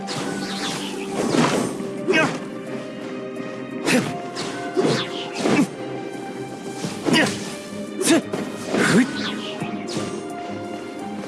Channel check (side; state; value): both; identical; correlation 1.00